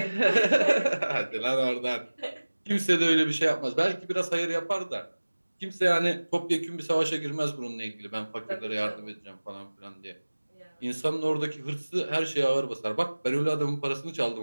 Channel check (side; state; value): both; inverted; correlation -1.00